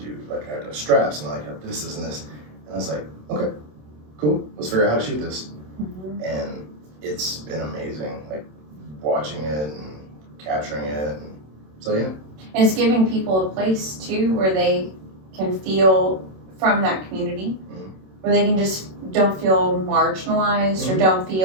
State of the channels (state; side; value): late; left; 27 ms